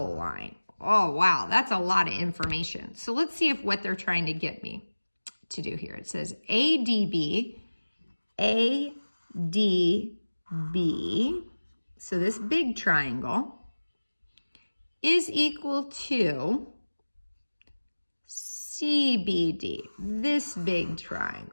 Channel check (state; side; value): inverted; both; correlation -1.00